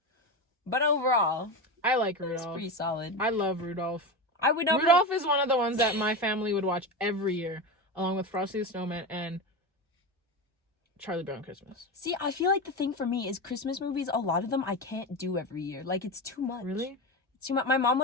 But overall, I like it's Rudolph. pretty solid. I love Rudolph. I would never... Rudolph is one of the ones that my family would watch every year, along with Frosty the Snowman and Charlie Brown Christmas. See, I feel like the thing for me is Christmas movies, a lot of them I can't do every year. Like, it's too much. Really? See, my mom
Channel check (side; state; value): both; normal; correlation 0.20